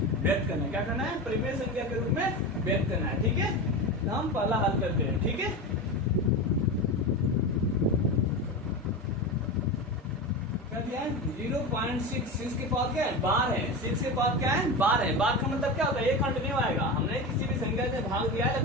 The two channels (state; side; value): normal; both; correlation 0.23